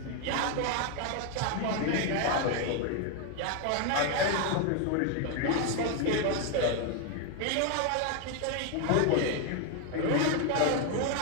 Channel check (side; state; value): both; different; correlation 0.01